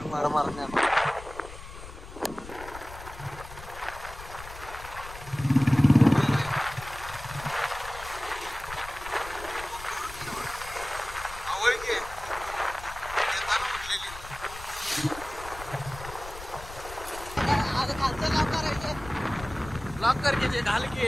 मार लॉक करके घाल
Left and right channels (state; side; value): noise; left; rumble, 14 dB below the sound